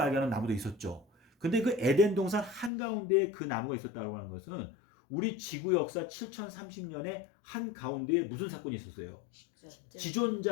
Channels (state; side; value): drops out; right; at 2.7 s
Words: 알게 하는 나무도 있었죠. 근데 그 에덴 동산 한가운데에 그 나무가 있었다고 하는 것은 우리 지구 역사 7030년의 한가운데에 무슨 사건이 있었어요?